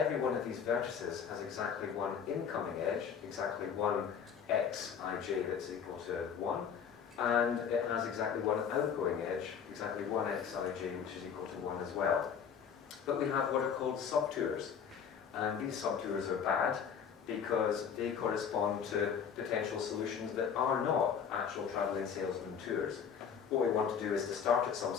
one of these vertices has exactly one incoming edge, exactly one xij that's equal to 1, and it has exactly one outgoing edge, exactly one xij, which is equal to 1 as well. But we have what are called subtours, and these subtours are bad because they correspond to potential solutions that are not actual travelling salesman tours. What we want to do is to start at some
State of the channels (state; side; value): quieter; right; 7.3 dB